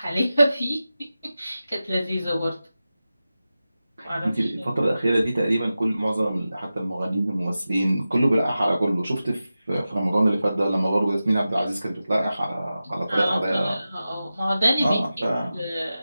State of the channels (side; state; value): both; inverted; correlation -0.94